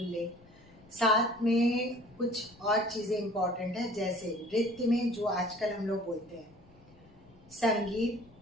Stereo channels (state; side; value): noise; left; rumble, 26 dB below the sound